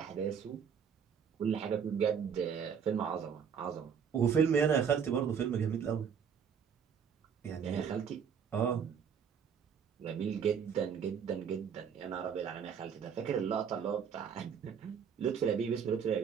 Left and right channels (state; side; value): quieter; left; 7.3 dB